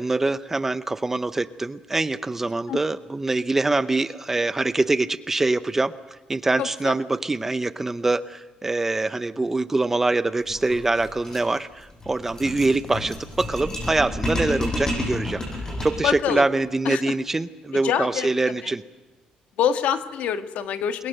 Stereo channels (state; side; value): normal; both; correlation 0.88